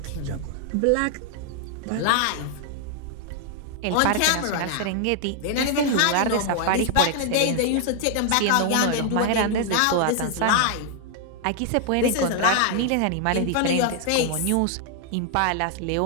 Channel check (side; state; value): both; different; correlation 0.00